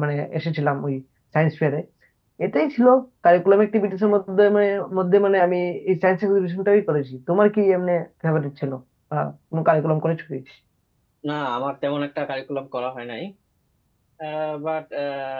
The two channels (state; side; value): identical; both; correlation 1.00